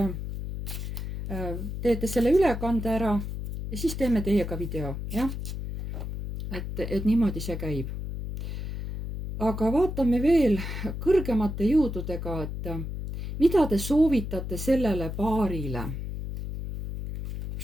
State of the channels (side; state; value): left; noise; hum, 6 dB below the sound